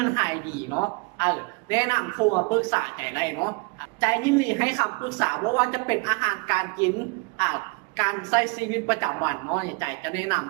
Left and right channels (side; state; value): left; quieter; 31.9 dB